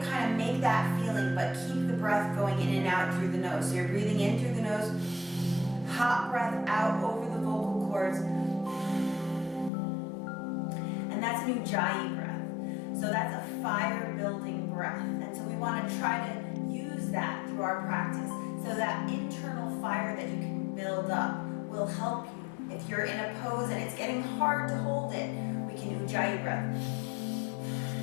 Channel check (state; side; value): drops out; right; at 9.7 s